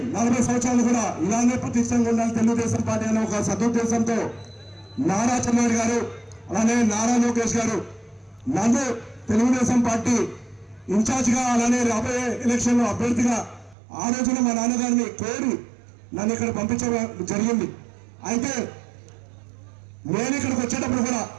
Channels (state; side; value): drops out; left; at 13.8 s